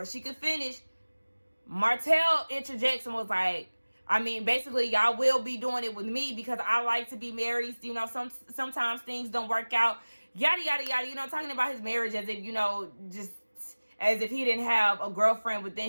she could finish, Martell interjects and was like, basically, y'all will be doing it with me because I like to be married. Sometimes things don't work out. yada, yada, yada, you know, talking about his marriage as if, you know, just as if he didn't have a girlfriend within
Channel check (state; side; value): inverted; both; correlation -1.00